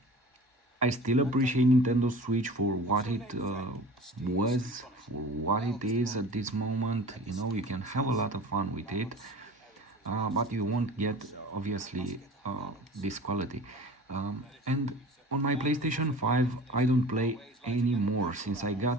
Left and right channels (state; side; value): normal; both; correlation 0.40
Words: still appreciate Nintendo Switch for what it was, for what it is at this moment. You know, you can have a lot of fun with it. But you won't get obviously this quality. And on my PlayStation 5 I don't play anymore. Since I